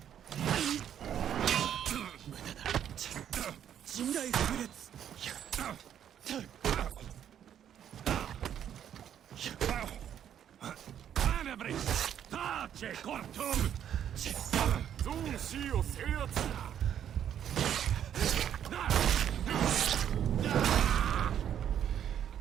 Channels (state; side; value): quieter; left; 9.7 dB